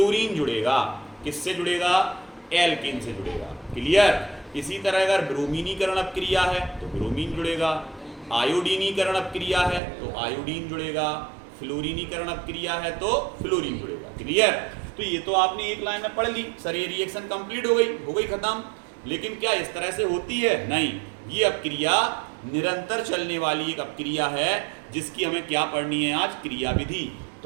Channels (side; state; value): left; drops out; at 9.8 s